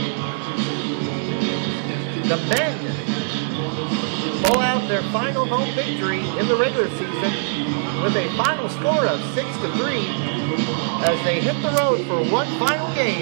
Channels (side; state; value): left; silent; 61 dB below the other